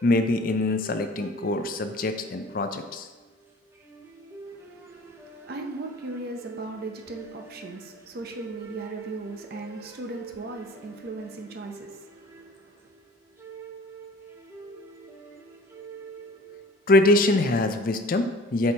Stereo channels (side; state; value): both; normal; correlation 0.46